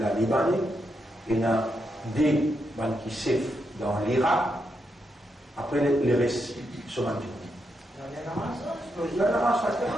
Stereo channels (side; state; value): both; normal; correlation 0.82